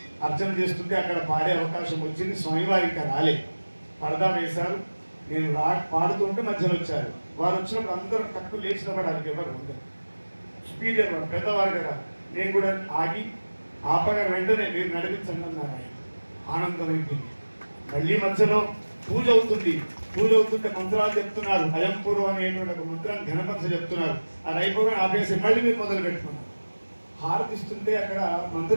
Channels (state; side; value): inverted; both; correlation -1.00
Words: అర్చన చేస్తుంటే అక్కడ పాడే అవకాశం వచ్చింది. స్వామివారి ఇంకా రాలే, పరదా వేశారు. నేను పాడుతుంటే మధ్యలో వచ్చారు. వారు వచ్చినప్పుడు అందరూ తక్కువ లేచిన పడాలి, ఎవరు అందరు స్పీకర్ వారు పెద్దవారు కదా. నేను కూడా ఆగి ఆపగా వెంటనే మీరు నడిపించండి అన్నారు. ఆయన ఆనందం అయిపోయింది. మళ్ళీ మధ్యలో పూజ అవుతుంది. పూజ అవుతుంటే మంత్రాలు చెప్తున్నారు. అయంపూర్వ అనేటువంటి ఒక మంత్రాన్ని ఘనపరచ చెప్తున్నారు. అది అయిపోగా ఆపేసి మళ్ళీ మీరు మొదలు పెట్టుకున్నారు. హారతిస్తుంటే అక్కడ